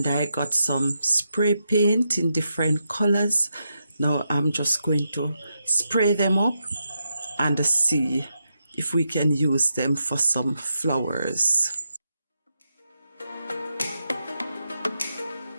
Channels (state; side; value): inverted; both; correlation -0.85